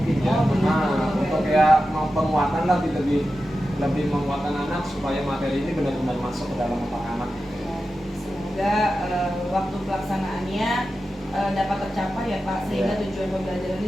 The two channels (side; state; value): both; normal; correlation 0.92